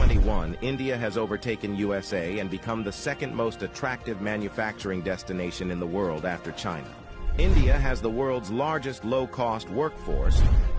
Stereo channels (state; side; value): identical; both; correlation 1.00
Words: India has overtaken USA and become the second most attractive manufacturing destination in the world after China. India has the world's largest low-cost workforce,